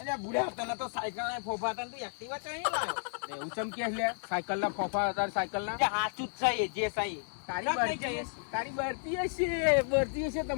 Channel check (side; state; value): right; silent; digital silence